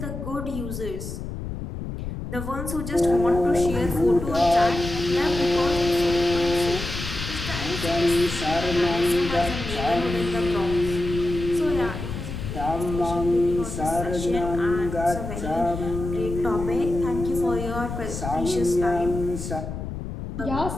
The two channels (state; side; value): noise; left; rumble, 7 dB below the sound